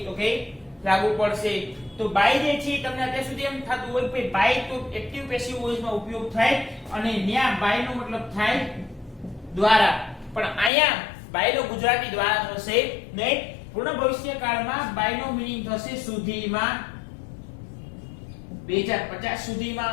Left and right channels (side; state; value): right; drops out; at 10.7 s